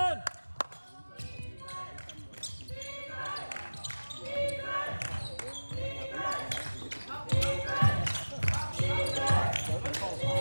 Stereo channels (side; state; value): both; inverted; correlation -1.00